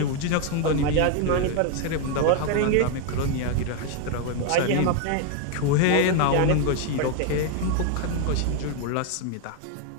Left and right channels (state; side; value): different; both; correlation 0.01